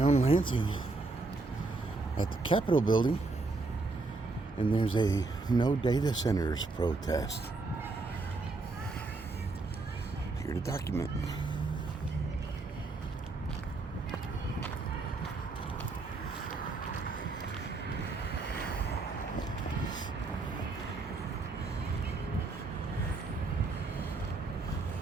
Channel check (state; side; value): quieter; left; 3.6 dB